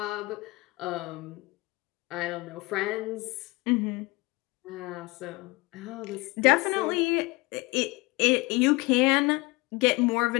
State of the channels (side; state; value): right; quieter; 23.9 dB